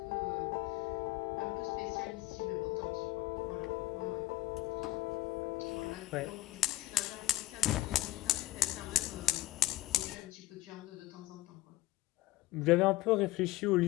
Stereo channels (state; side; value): quieter; right; 16.5 dB